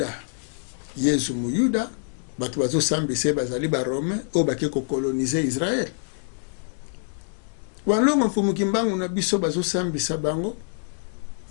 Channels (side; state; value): right; silent; 61 dB below the other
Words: Yesu muyuda batu bazo sambise bazali ba Rome o bake ko coloniser Israël walongo mfumuki mbangu na biso bazo sambisa bango